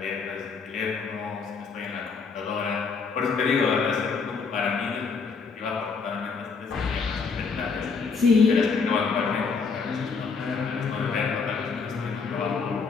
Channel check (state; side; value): quieter; right; 5.1 dB